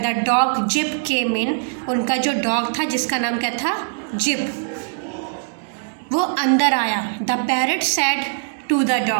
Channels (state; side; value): silent; left; digital silence